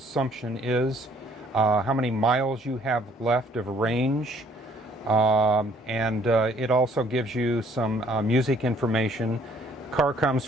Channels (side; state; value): both; normal; correlation 0.62